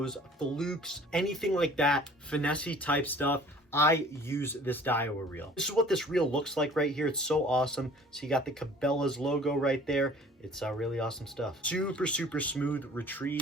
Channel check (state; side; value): normal; both; correlation 0.49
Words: flukes, anything like that, finesse type stuff. I use this Daiwa reel. This is what this reel looks like right here. It's so awesome. So you got the Cabela's logo right there. It's really awesome stuff. Super smooth